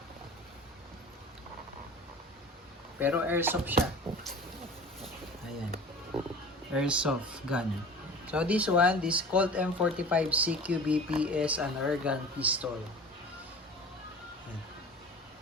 Pero airsoft siya. Ayan. Airsoft gun. So this one, this Colt M45 CQBP is an airgun pistol.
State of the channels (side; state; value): both; normal; correlation 0.40